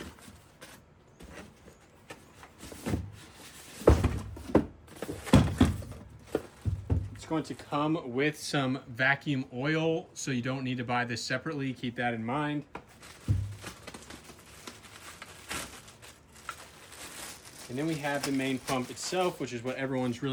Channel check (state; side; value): identical; both; correlation 1.00